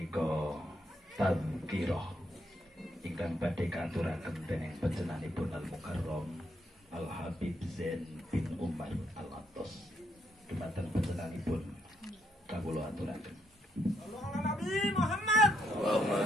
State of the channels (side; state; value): both; normal; correlation 0.76